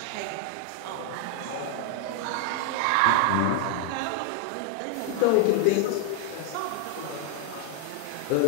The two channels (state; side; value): different; both; correlation 0.00